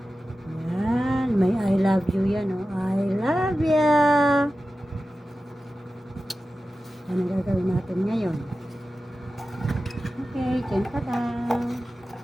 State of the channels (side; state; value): both; normal; correlation 0.94